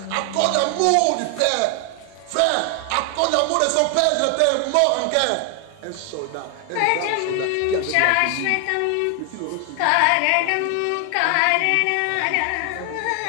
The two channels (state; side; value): different; both; correlation 0.00